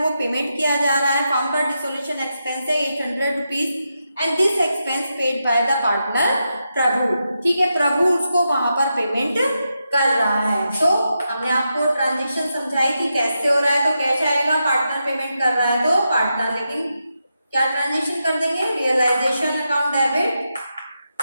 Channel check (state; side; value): inverted; both; correlation -0.86